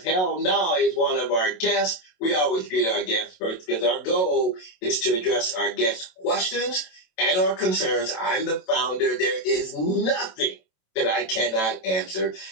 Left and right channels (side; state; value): right; late; 27 ms